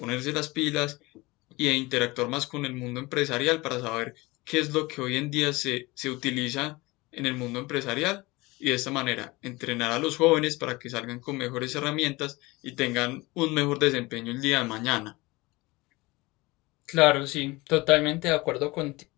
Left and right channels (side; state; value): right; quieter; 22.4 dB